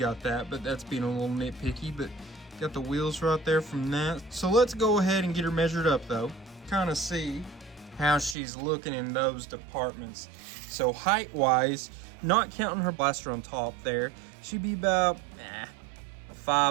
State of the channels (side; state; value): left; drops out; at 8.3 s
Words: that, but that's being a little nitpicky. But got the wheels right there from that. So let's go ahead and get her measured up though, kind of see how she's looking in those departments. So height wise, not counting her blaster on top there, she'd be about